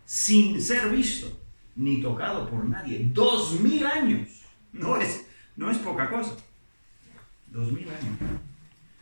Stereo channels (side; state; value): both; inverted; correlation -1.00